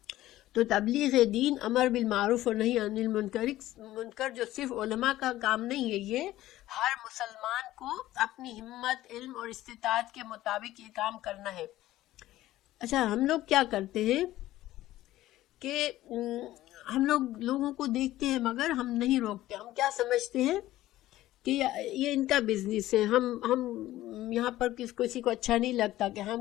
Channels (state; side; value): quieter; right; 15.3 dB